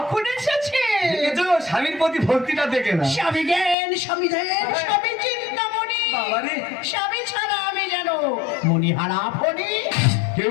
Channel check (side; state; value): right; drops out; at 3.8 s